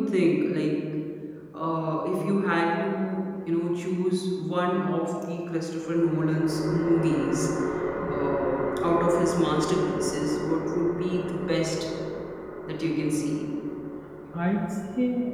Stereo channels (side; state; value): both; identical; correlation 1.00